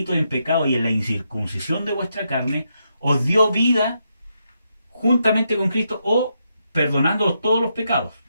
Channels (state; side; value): inverted; both; correlation -0.81